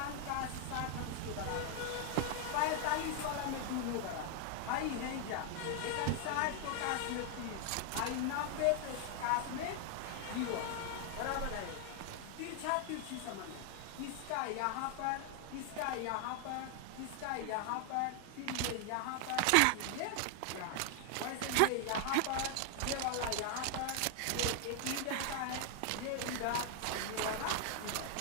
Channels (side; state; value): both; different; correlation 0.00